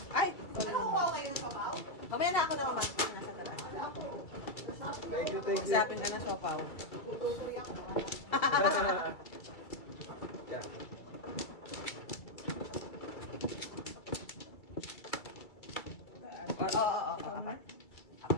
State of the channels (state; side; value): late; right; 2.3 ms